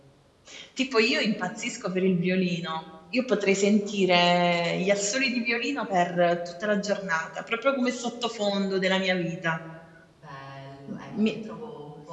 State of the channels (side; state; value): both; identical; correlation 1.00